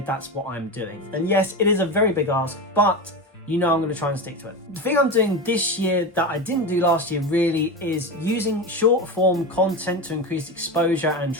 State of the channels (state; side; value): normal; both; correlation 0.21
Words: that's what I'm doing. And yes, it is a very big ask, but you know I'm going to try and stick to it. The thing I'm doing this year that I didn't do last year really is using short form content to increase exposure and